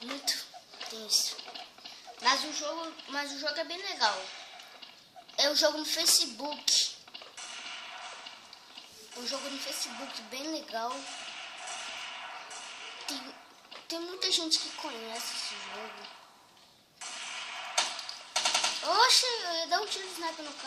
Muito tenso. Mas o jogo é bem legal. É um jogo no Facebook. Um jogo no Facebook bem legal. Tem muita gente que conhece esse jogo. Oxe, eu ia dar um tiro de sniper no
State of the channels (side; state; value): both; identical; correlation 1.00